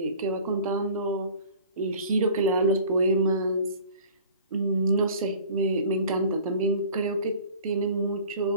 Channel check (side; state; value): both; inverted; correlation -0.45